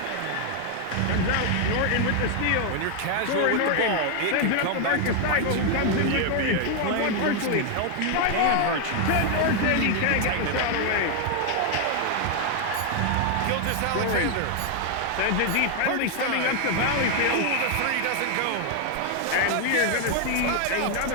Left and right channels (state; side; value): different; both; correlation 0.00